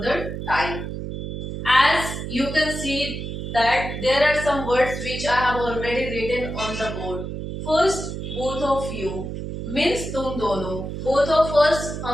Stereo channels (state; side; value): noise; right; hum, 6 dB below the sound